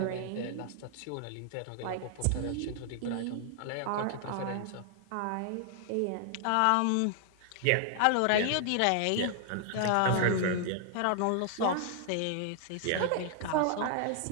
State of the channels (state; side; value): different; both; correlation 0.00